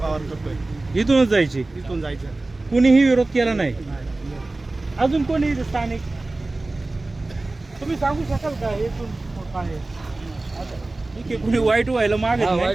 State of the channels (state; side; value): quieter; left; 3.1 dB